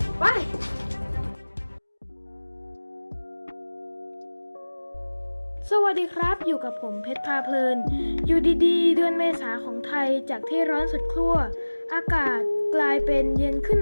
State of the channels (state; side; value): inverted; both; correlation -1.00